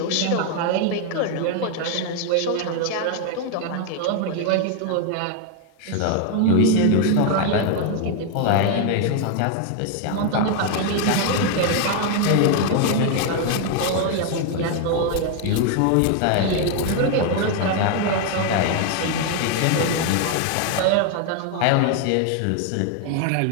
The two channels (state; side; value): different; both; correlation 0.00